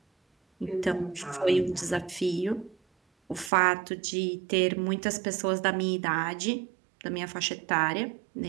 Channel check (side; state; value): left; drops out; at 3.5 s